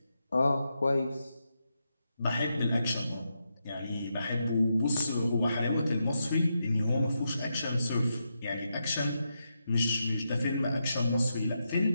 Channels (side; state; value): both; inverted; correlation -0.85